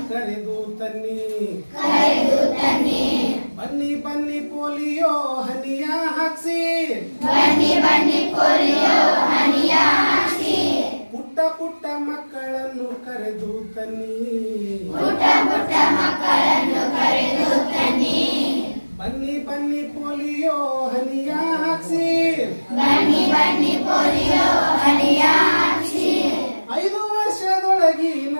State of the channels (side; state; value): both; inverted; correlation -1.00